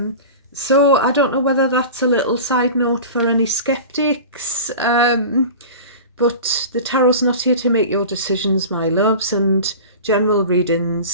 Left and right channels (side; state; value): both; inverted; correlation -0.34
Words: So I don't know whether that's a little side note for any skeptics, but the tarot's not here to make your decisions, my loves. And general